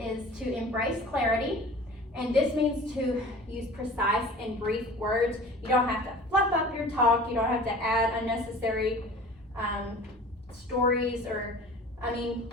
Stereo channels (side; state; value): both; normal; correlation 0.42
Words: to embrace clarity. And this means to use precise and brief words. You don't have to fluff up your talk. You don't have to add unnecessary stories